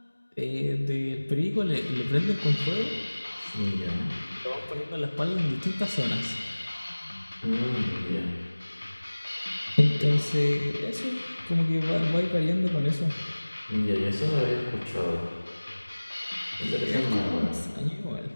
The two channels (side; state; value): both; inverted; correlation -1.00